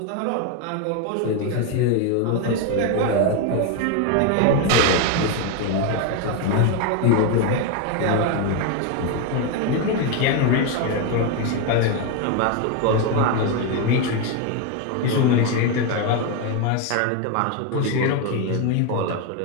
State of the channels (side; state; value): both; different; correlation 0.02